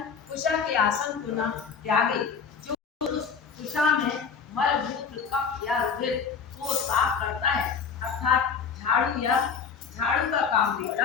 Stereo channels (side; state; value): right; quieter; 6.1 dB